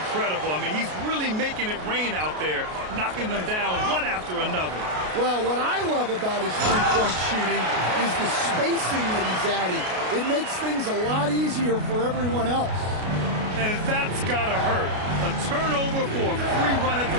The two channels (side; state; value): left; late; 33 ms